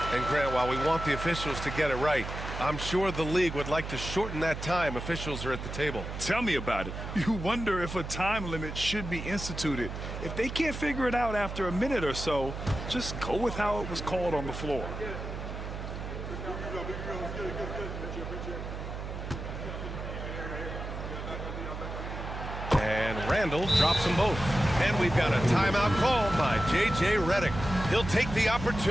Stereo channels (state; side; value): noise; right; hum, 7 dB below the sound